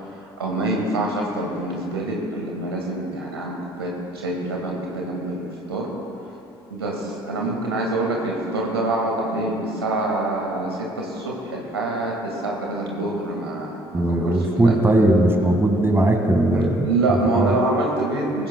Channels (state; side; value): normal; both; correlation 0.57